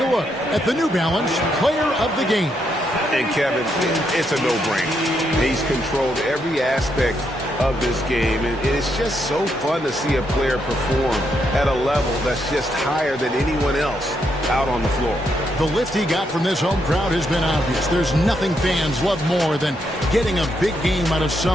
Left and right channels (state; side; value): normal; both; correlation 0.78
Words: look at the New Balance Player of the Game. And Kevin, it's a no-brainer. He's controlled every aspect of this game, and it's just so fun to see a player perform at a level that's just higher than anyone else out on the floor. The lift he got from this home crowd has been obvious. There's nothing fans love more than getting a big game out of